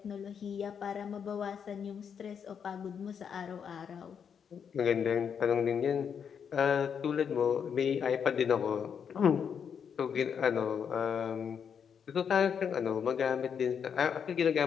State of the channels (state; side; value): quieter; right; 7.3 dB